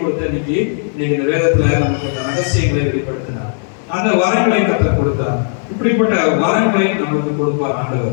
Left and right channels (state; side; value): silent; right; 67 dB below the other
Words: இன்னைக்கு இந்த வேதத்துல நமக்கு அந்த ரகசியங்களை வெளிப்படுத்தினார். அந்த வரங்களை கர்த்தர் கொடுத்தார். இப்படிப்பட்ட வரங்களை நமக்கு கொடுப்பார்